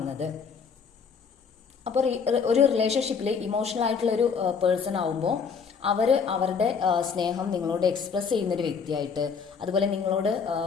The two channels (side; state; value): right; quieter; 5.9 dB